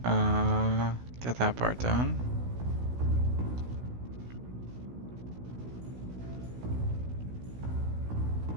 get that part done.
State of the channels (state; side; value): late; left; 16 ms